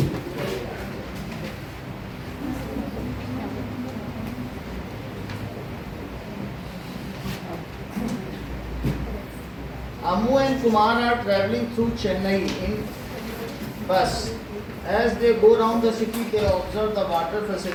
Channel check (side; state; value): both; identical; correlation 1.00